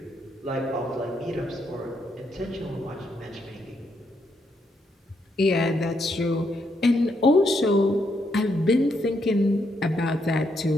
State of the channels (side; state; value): both; normal; correlation 0.77